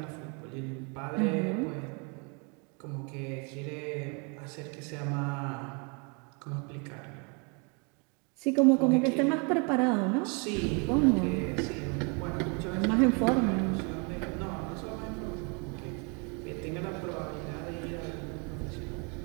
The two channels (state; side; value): quieter; left; 34.1 dB